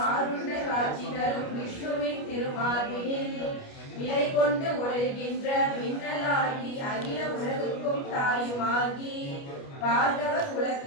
காட்சி தரும் விஷ்ணுவின் திருமார்பினில் நிலை கொண்டு ஒழுகின்ற மின்னலாகி அகில உலகுக்கும் தாயுமாகி பார்கவ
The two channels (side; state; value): right; late; 29 ms